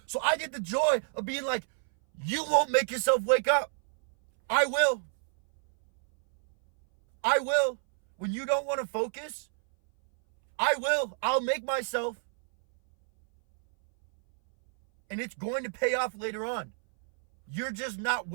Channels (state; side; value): silent; left; 59 dB below the other